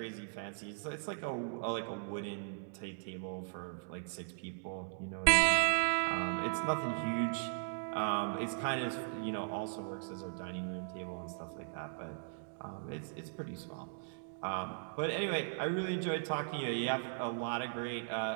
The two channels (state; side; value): silent; left; digital silence